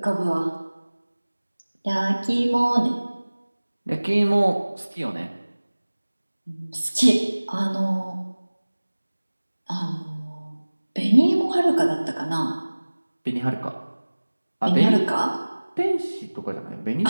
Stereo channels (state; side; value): inverted; both; correlation -1.00